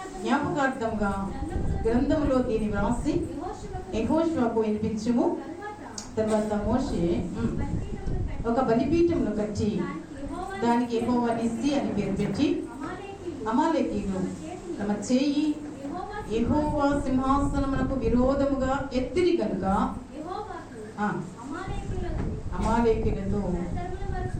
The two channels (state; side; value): identical; both; correlation 1.00